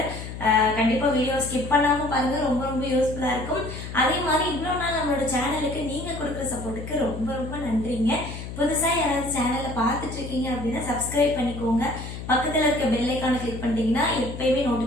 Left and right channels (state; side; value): noise; left; hum, 9 dB below the sound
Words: கண்டிப்பாக வீடியோ ஸ்கிப் பண்ணாமல் பாருங்கள், ரொம்ப ரொம்ப யூஸ்ஃபுல்லாக இருக்கும். அதே மாதிரி இவ்வளோ நாள் நம்மளோட சேனலுக்கு நீங்கள் கொடுக்குற சப்போர்ட்டுக்கு ரொம்ப ரொம்ப நன்றிங்க. புதுசாக யாராவது சேனலை பார்த்துட்டு இருக்கீங்க அப்படின்னா சப்ஸ்கிரைப் பண்ணிக்கோங்க. பக்கத்தில் இருக்க பெல் ஐக்கானை கிளிக் பண்ணிட்டீங்கன்னா எப்பயுமே